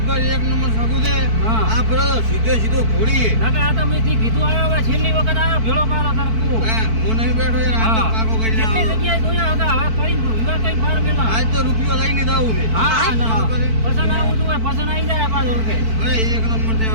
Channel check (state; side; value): late; left; 4.5 ms